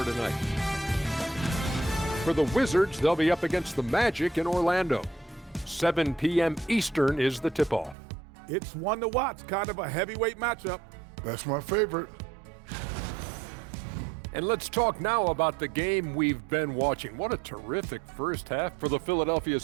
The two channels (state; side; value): drops out; left; at 8.0 s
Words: tonight. For the Wizards, they'll be up against the Magic in Orlando. 7 p.m. Eastern is the tip-off. It's one to watch, kind of a heavyweight matchup. That's my favorite. And let's talk now about the game we've been watching. What a terrific first half for the Philadelphia